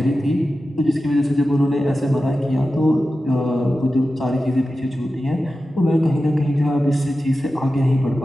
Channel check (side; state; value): both; normal; correlation 0.93